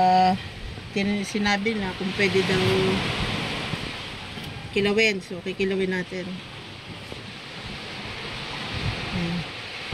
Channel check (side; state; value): both; identical; correlation 1.00